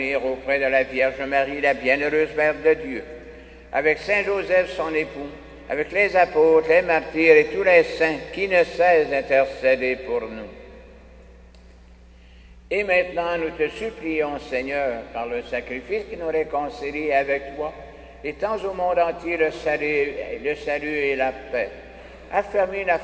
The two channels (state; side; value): identical; both; correlation 1.00